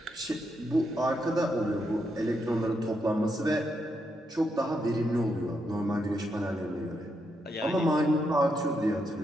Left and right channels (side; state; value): both; normal; correlation 0.81